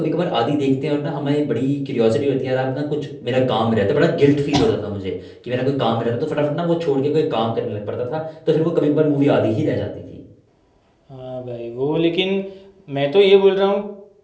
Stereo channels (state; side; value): identical; both; correlation 1.00